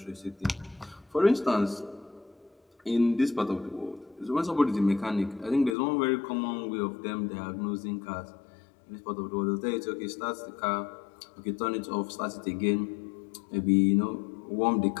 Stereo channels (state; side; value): drops out; right; at 5.8 s